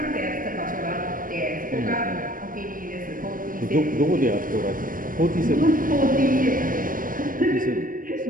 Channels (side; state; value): left; late; 0.40 ms